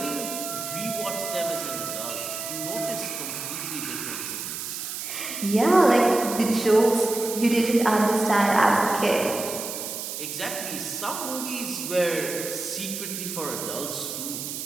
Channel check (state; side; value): noise; right; hiss, 6 dB below the sound